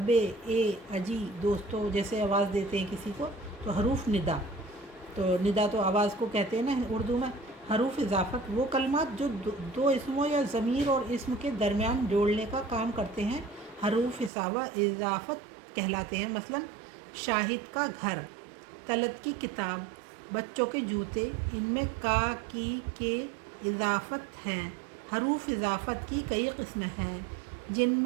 ए, अजी, दोस्तों, जैसे आवाज़ देते हैं किसी को, तो हरूफ निदा। तो निदा तो आवाज़ को कहते हैं ना उर्दू में। हरूफ इजाफ़त, वो कलमात जो दो इसमों या ज़मीर और इसम के दरमियान जोड़ने का काम करते हैं, हरूफ इजाफ़त कहलाते हैं, मसलन शाहिद का घर, तलत की किताब, बच्चों के जूते, इनमें का, की, के इजाफ़त हैं। हरूफ इजाफ़त की कई किस्में हैं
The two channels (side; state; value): left; drops out; at 14.3 s